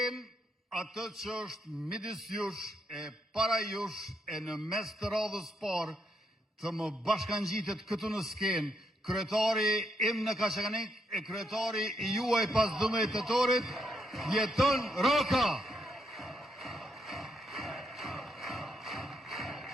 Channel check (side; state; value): both; normal; correlation 0.77